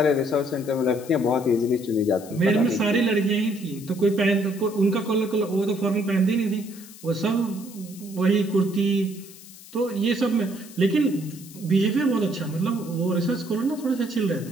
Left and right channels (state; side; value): noise; left; hiss, 19 dB below the sound